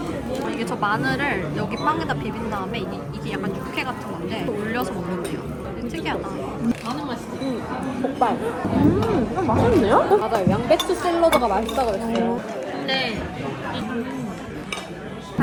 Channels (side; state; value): both; identical; correlation 1.00